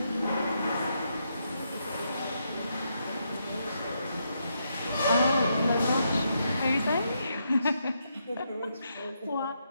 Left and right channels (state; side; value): inverted; both; correlation -0.79